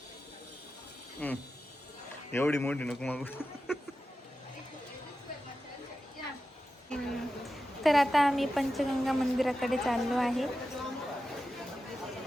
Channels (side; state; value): both; normal; correlation 0.92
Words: एवढी मोठी नको मागू. तर आता आम्ही पंचगंगा मंदिराकडे चाललो आहे.